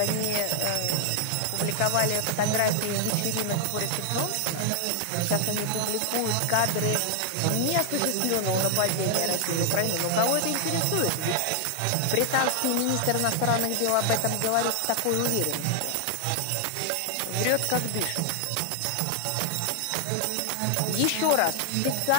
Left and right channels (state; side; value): different; both; correlation 0.00